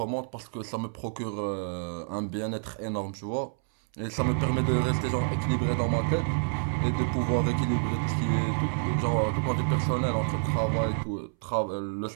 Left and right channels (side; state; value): left; silent; 59 dB below the other